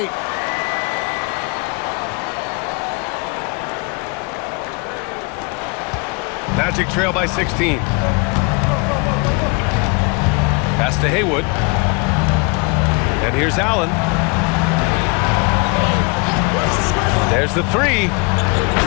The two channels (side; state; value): right; quieter; 30.8 dB